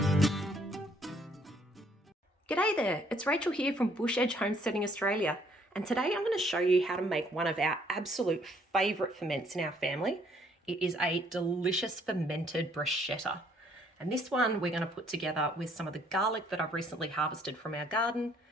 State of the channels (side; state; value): both; normal; correlation 0.65